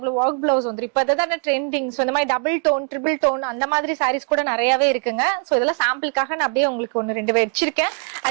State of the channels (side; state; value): left; quieter; 37.9 dB